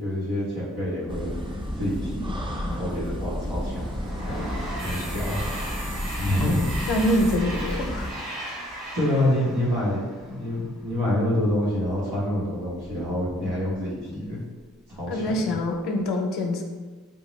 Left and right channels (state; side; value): normal; both; correlation 0.65